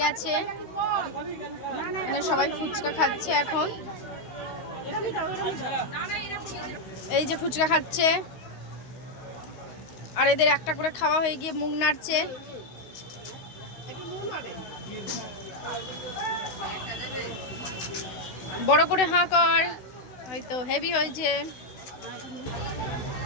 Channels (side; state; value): right; late; 16 ms